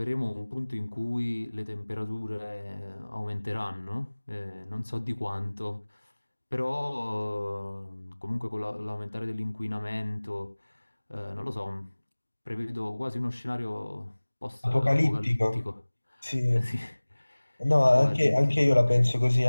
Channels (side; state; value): both; inverted; correlation -1.00